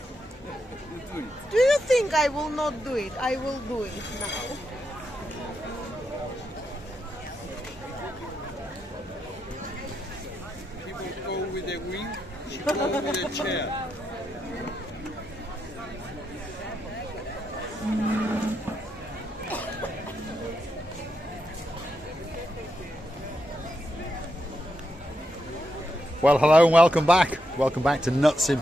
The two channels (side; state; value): both; normal; correlation 0.83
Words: do you think I will not do it? I will do it now. People go with the wing, she go with the chair. Well, hello and welcome back. Welcome back to Nuts in